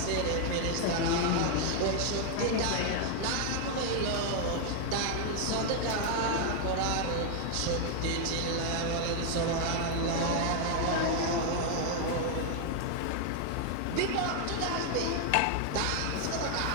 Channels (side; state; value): both; different; correlation 0.00